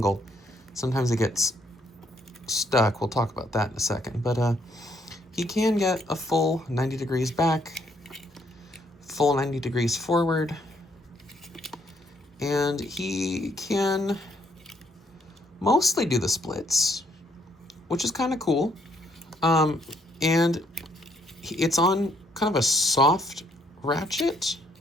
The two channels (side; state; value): both; normal; correlation 0.70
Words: sometimes it gets stuck. We'll talk about that in a second. But he can get a full 90 degrees back, full 90 degrees forward, and he can mostly do the splits, which is kind of cool. And it's on kind of a soft ratchet,